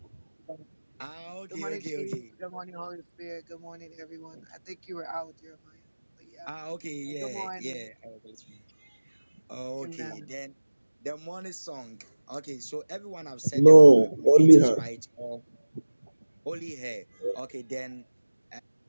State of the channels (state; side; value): inverted; both; correlation -1.00